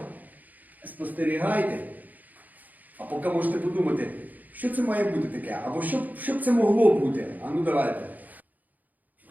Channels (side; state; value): left; late; 0.081 ms